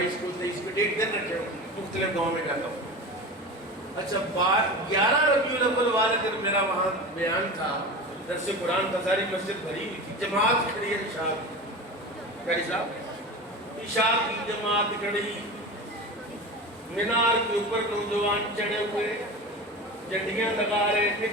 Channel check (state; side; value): normal; both; correlation 0.29